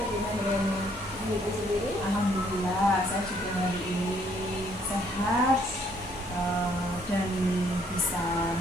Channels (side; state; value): both; normal; correlation 0.67